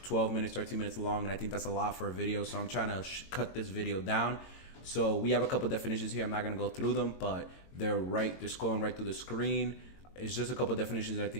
12 minutes, 13 minutes long, and I think that's a lot for a video, so I'm trying to cut this video down. So we have a couple definitions here. I'm not going to go through them, but they're scrolling right through the screen. It's just a couple definitions that I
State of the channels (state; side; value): late; right; 22 ms